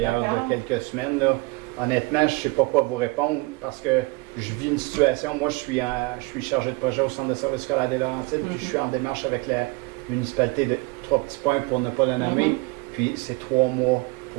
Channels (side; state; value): left; quieter; 25.6 dB